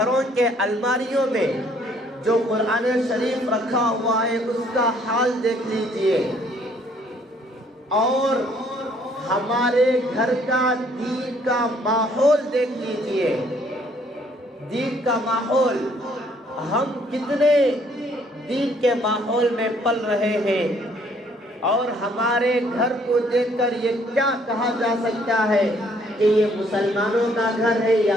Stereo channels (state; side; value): normal; both; correlation 0.63